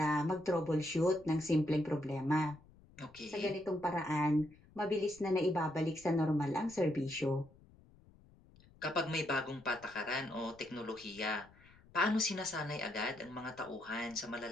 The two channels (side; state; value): left; noise; rumble, 25 dB below the sound